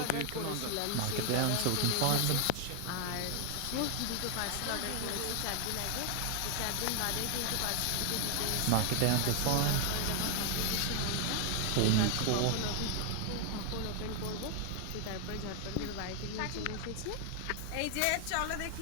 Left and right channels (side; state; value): both; different; correlation 0.00